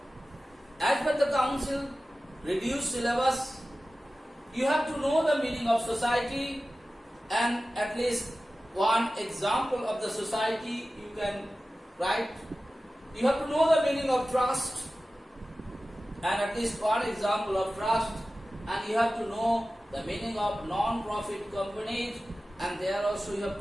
as per the council reduced syllabus, you have to know the meaning of society and at least one example of the society you can write. You have to know the meaning of trust and at least one example of trust, and you have to know the meaning of non-profit companies, and there also you have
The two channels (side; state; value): both; normal; correlation 0.95